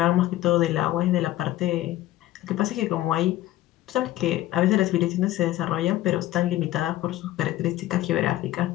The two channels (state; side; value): quieter; right; 15.0 dB